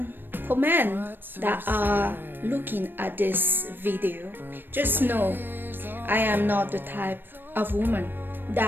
for men that are looking at this video, just know I am not the type of woman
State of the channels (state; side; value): late; left; 0.095 ms